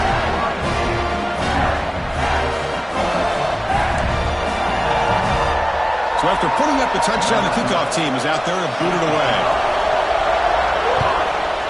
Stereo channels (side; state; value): both; identical; correlation 1.00